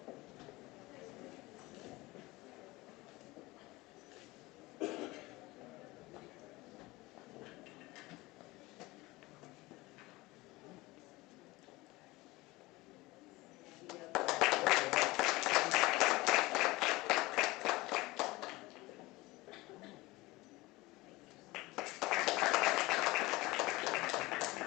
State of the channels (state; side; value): quieter; right; 20.9 dB